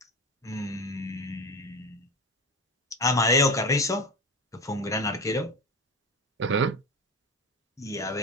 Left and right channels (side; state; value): both; normal; correlation 0.24